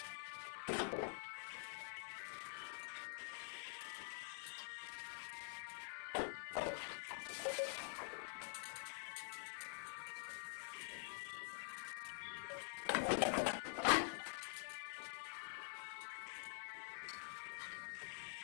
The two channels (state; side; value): silent; right; digital silence